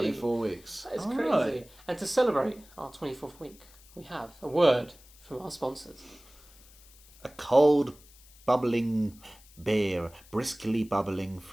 weeks. That is All crazy. right. And to celebrate our 24th week, we have a word from our sponsors. A cold, bubbling beer, briskly bubbling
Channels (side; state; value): left; noise; hiss, 25 dB below the sound